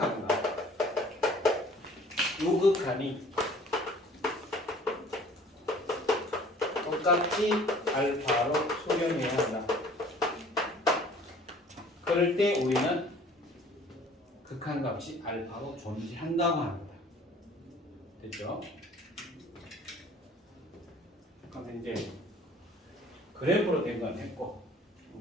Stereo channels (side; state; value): both; normal; correlation 0.51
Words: 우극한이 똑같이 알파로 수렴해야 한다. 그럴 때 우리는 극한값이 알파로 존재한다고 합니다. 됐죠? 그럼 이제 그래프로 된 건 했고